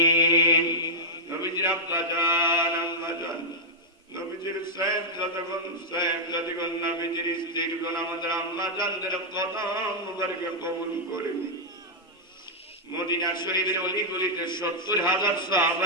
নবীজির আব্বা জান, আম্মা জান, নবীজির সাহেবজাদাগণ, সাহেবজাদিগণ, নবীজির স্ত্রীগণ, আমাদের আম্মা জানদের কদম মুবারকে কবুল করে নিন। মদিনা শরীফের অলিগলিতে 70,000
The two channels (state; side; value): normal; both; correlation -0.07